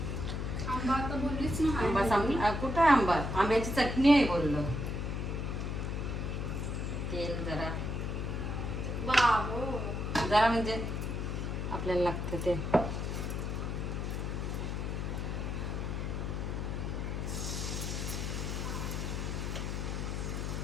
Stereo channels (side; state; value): left; noise; hum, 2 dB below the sound